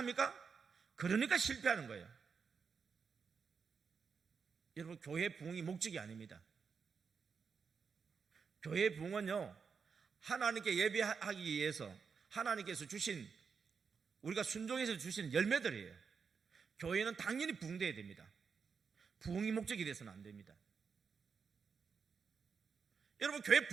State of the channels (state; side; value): quieter; left; 5.8 dB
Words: 그러니까 실패하는 거예요. 여러분, 교회 부흥이 목적이 아닙니다. 교회 부흥은요, 하나님께 예배하기 위해서 하나님께서 주신, 우리가 순종해서 주신 열매들이에요. 교회는 당연히 부흥돼야 됩니다. 부흥이 목적이 돼서는 안 됩니다. 여러분, 교회